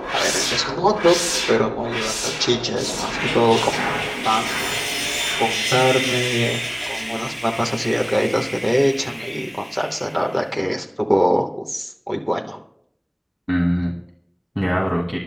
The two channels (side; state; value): both; identical; correlation 1.00